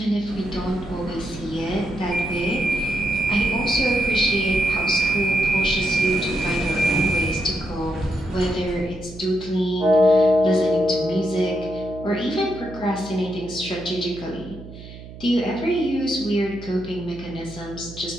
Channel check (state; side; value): noise; right; hum, 15 dB below the sound